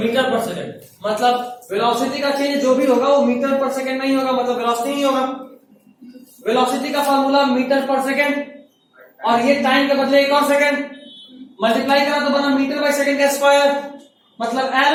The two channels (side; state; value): both; identical; correlation 1.00